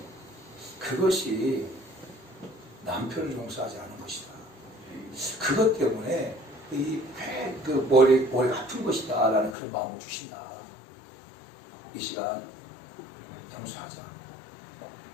그것이 남편을 용서하지 않은 것이다. 그것 때문에 그 머리가 아픈 것이다 라는 그런 마음을 주신다. 이 시간 용서하자.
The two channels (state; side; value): drops out; right; at 9.6 s